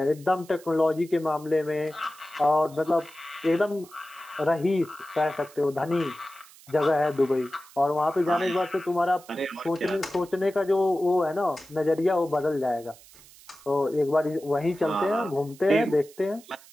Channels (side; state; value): right; noise; hiss, 23 dB below the sound